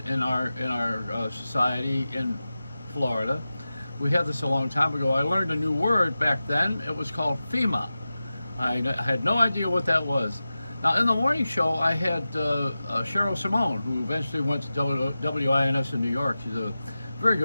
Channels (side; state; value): both; inverted; correlation -0.95